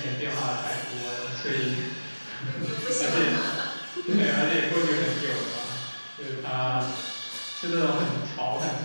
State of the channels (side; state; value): both; inverted; correlation -1.00